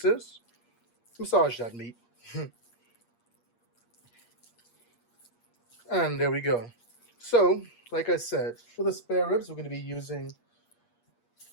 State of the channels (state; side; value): late; right; 8.5 ms